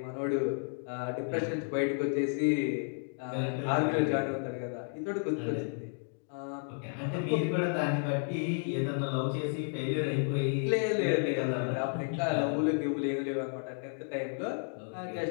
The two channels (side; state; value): right; silent; 56 dB below the other